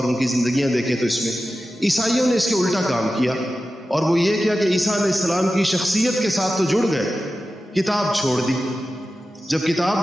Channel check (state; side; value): normal; both; correlation 0.93